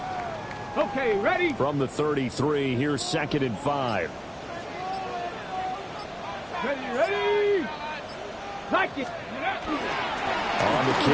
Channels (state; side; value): identical; both; correlation 1.00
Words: Okay, ready? From the 33, here's 2nd and 5. Ready? Like it. On the